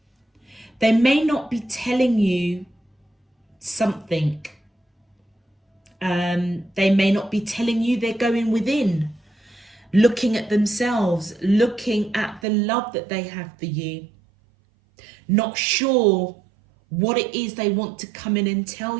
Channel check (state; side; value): drops out; left; at 12.4 s